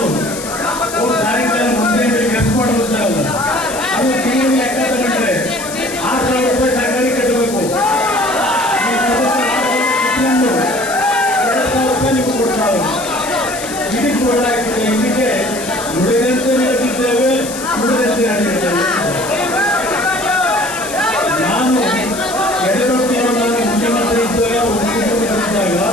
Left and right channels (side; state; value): left; noise; hiss, 10 dB below the sound